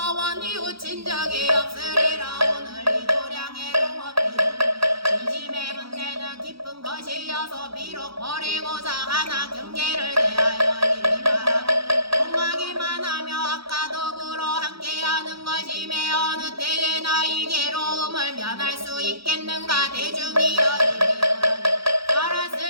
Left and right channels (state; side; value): late; left; 0.76 ms